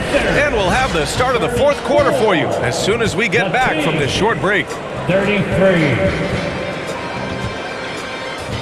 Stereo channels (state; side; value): identical; both; correlation 1.00